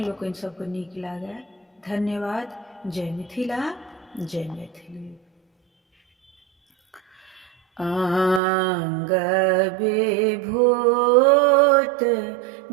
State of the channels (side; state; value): left; drops out; at 8.4 s